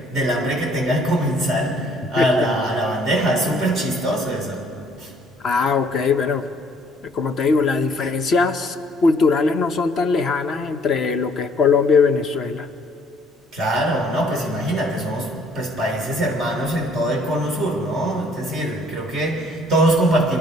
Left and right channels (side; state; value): both; normal; correlation 0.61